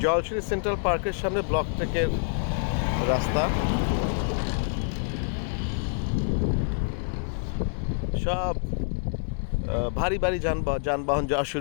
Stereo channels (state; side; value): silent; right; 59 dB below the other